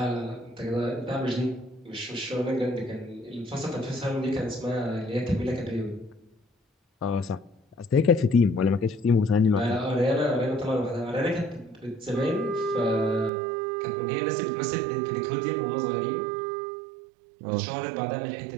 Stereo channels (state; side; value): drops out; left; at 13.3 s